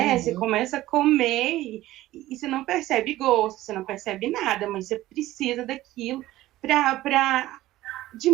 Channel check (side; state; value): left; quieter; 15.9 dB